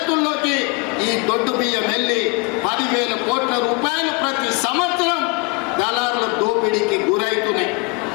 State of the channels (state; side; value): quieter; right; 29.0 dB